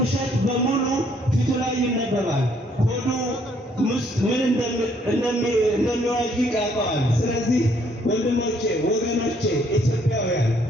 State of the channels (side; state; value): both; normal; correlation 0.66